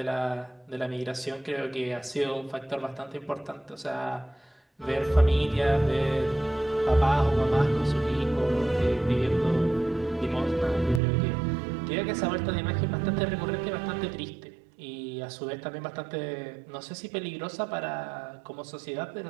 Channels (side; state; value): left; drops out; at 11.0 s